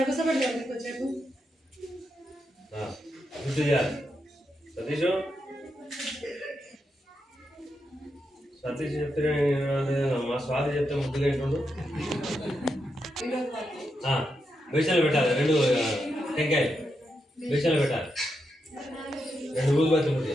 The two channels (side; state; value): both; normal; correlation 0.84